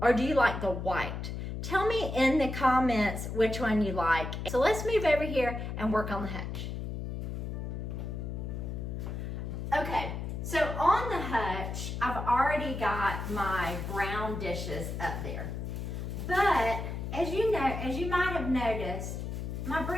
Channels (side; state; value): left; noise; hum, 5 dB below the sound